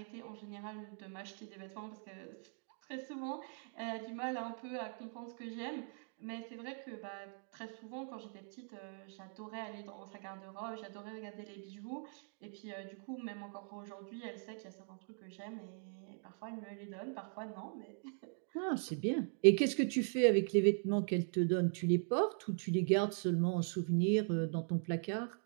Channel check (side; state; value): left; silent; 51 dB below the other